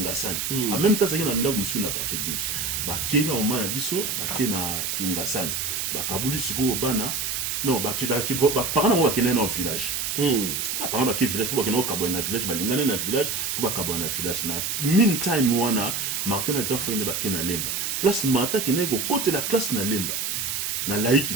en même temps azaki na ndako musu na quartier 12 ba kena maman na biso ba kena Kingasani ba kabuli siko bana non ba kida ki ba parana wa kena na village par exemple village pour que kabwa na village balingana na village faut ba kabwa na village na meantime wana Martin na grand frère na ba kena lemba place Martin kena go côté la classe na lemba na laïki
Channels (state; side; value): noise; right; hiss, 1 dB below the sound